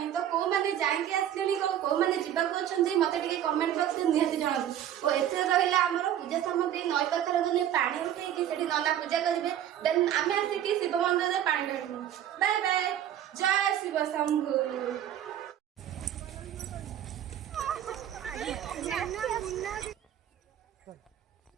तो कौ मैंने जाइए आसले कौ मैंने जावाक मत कमेंट बॉक्स में निहती जनातु और एथे रहा आम पूजा सामग्री नई पाखर गले पानी उठे नना पूजा करेंगे देन आम आसिक शिव मंदिर में पानी ढालू। बाय बाय, जय शिव शंभु।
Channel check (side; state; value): left; quieter; 10.8 dB